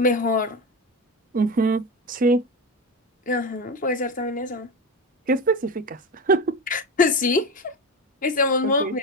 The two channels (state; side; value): normal; both; correlation 0.21